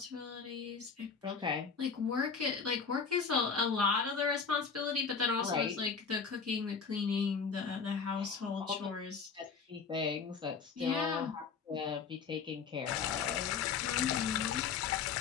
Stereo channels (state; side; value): quieter; right; 5.7 dB